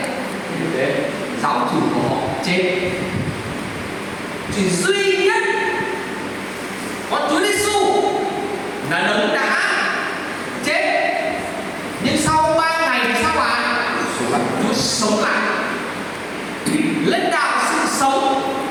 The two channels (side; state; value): both; identical; correlation 1.00